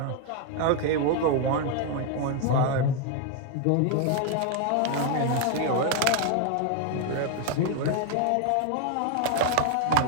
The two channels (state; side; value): different; both; correlation 0.00